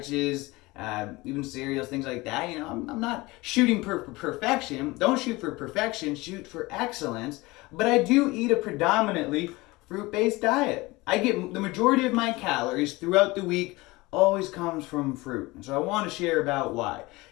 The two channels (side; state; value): right; quieter; 21.8 dB